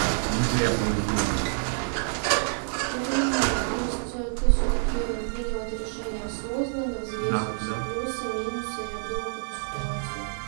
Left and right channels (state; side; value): silent; left; 60 dB below the other